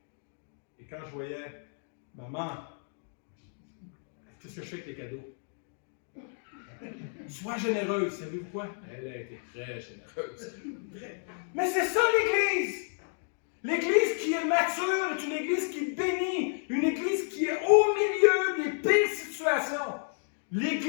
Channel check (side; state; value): right; silent; 56 dB below the other